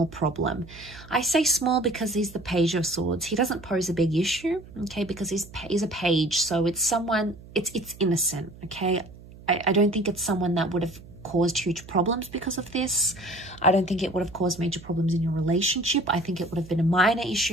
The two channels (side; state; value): right; noise; hum, 19 dB below the sound